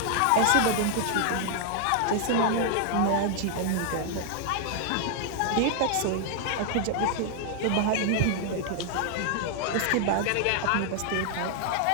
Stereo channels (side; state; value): both; different; correlation 0.00